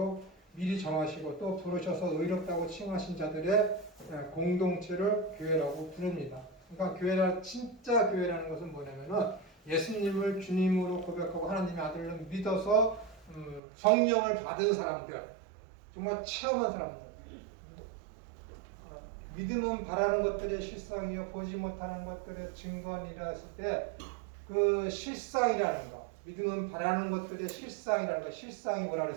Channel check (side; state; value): left; drops out; at 13.6 s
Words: 미리 정하시고 또 부르셔서 의롭다고 칭하신 자들의 공동체를 교회라고 부릅니다. 그러니까 교회라 진짜 교회라는 것은 뭐냐면은 예수님을 주님으로 고백하고 하나님의 아들로 믿어서 성령을 받은 사람들, 정말 체험한 사람들. 믿음은 바라는 것들의 실상이요 보지 못하는 것들의 증거니라 했을 때 그 실상이라는 거, 믿음은 바라는 것들의 실상이라는 거, 실상이 뭐라